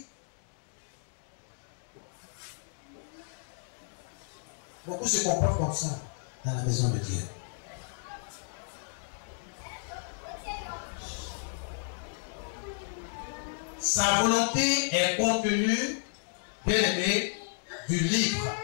Beaucoup se comportent comme ça dans la maison de Dieu. Sa volonté est contenue, bien aimé, du livre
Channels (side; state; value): right; silent; digital silence